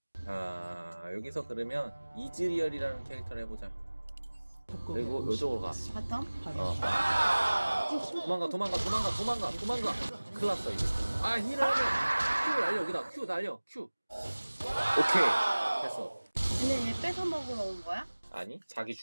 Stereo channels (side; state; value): both; inverted; correlation -1.00